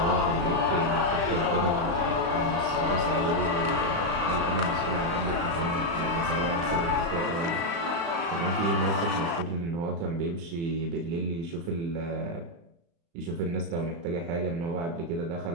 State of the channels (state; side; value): late; left; 35 ms